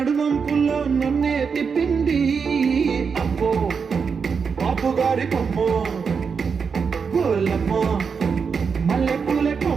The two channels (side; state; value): left; quieter; 5.8 dB